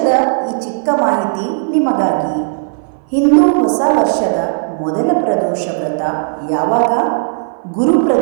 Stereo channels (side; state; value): left; silent; 58 dB below the other